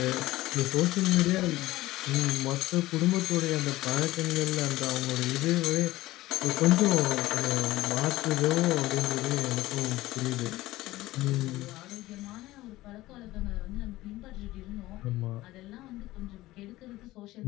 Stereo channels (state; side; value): quieter; right; 17.4 dB